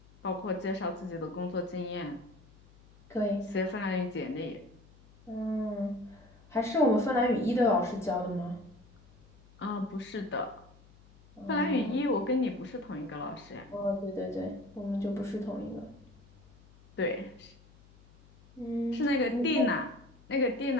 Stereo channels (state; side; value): noise; left; hum, 25 dB below the sound